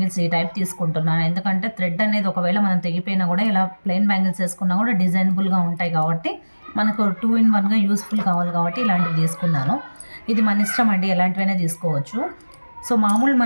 ఈ టైప్ తీసుకుంటున్నాను. ఎందుకంటే థ్రెడ్ అనేది ఒకవేళ మనం తెగిపోయినా కూడా ఇలా ప్లెయిన్ బ్యాంగిల్స్ వేసుకున్నా కూడా డిజైనబుల్గా ఉంటాయి కాబట్టి మనకు 2 in 1గా యూస్ఫుల్ కావాలి కాబట్టి ఇలాంటివి తీసుకున్నాను. ఇది మన ఇష్టం అండి, ఎలాంటివైనా తీసుకోవచ్చు. సో మామూలు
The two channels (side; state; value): both; inverted; correlation -1.00